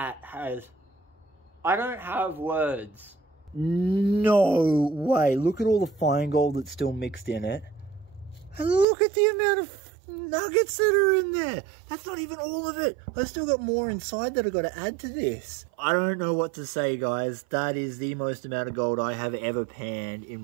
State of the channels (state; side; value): drops out; left; at 8.8 s